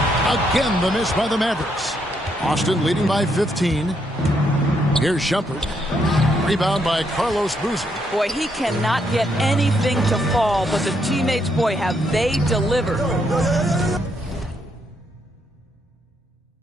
Again, the miss by the Mavericks. Austin leading by 15. Here's Shumpert. Rebound by Carlos Boozer. Boy, he cannot get anything to fall, but the teammates, boy, have they delivered.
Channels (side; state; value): both; normal; correlation 0.76